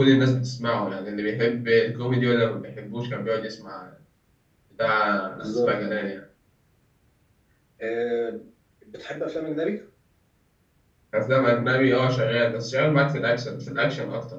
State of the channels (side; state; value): both; identical; correlation 1.00